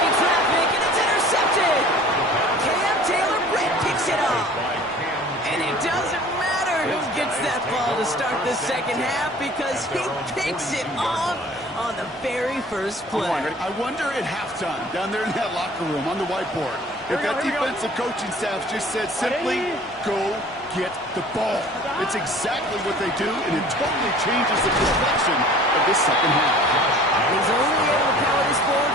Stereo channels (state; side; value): normal; both; correlation 0.47